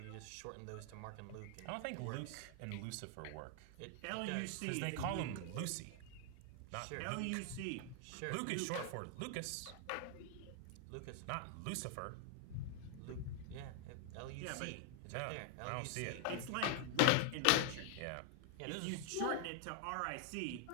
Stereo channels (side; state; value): both; different; correlation 0.00